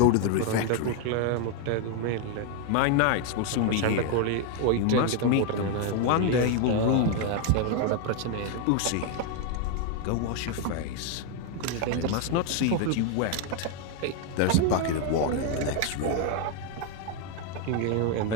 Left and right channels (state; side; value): different; both; correlation 0.01